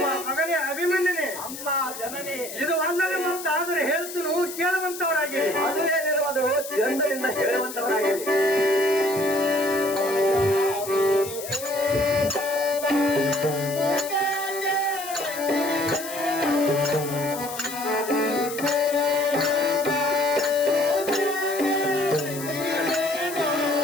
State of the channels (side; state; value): left; noise; hiss, 10 dB below the sound